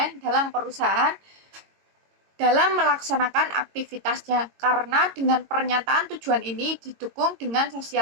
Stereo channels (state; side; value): late; left; 22 ms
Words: dalam perusahaan dalam melaksanakan aktivitasnya, karena dengan pernyataan tujuan ini didukung dengan